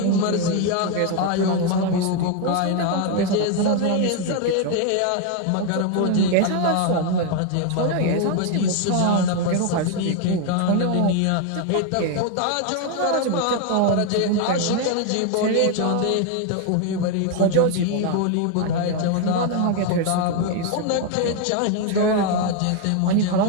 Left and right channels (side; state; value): both; different; correlation 0.01